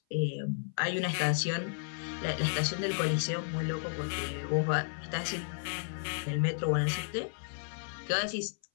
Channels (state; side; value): silent; right; 56 dB below the other